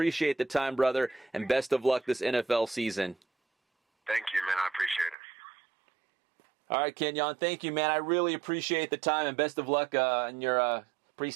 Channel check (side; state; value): left; drops out; at 5.2 s